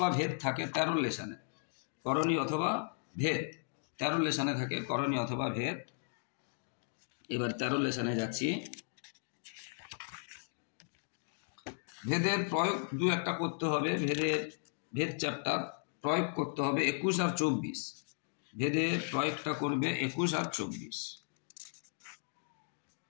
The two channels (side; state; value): right; silent; digital silence